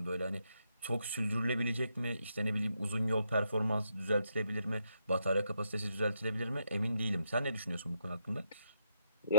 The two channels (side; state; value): both; inverted; correlation -0.77